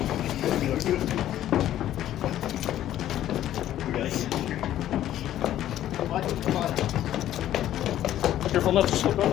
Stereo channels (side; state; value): right; quieter; 12.4 dB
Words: You guys. What? Come on. Careful not to slip on